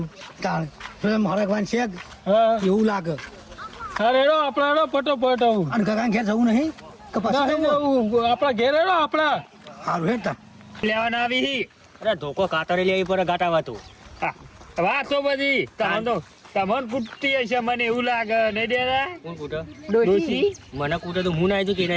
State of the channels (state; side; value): identical; both; correlation 1.00